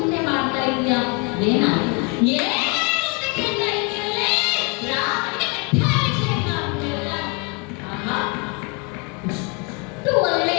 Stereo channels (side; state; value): right; quieter; 32.8 dB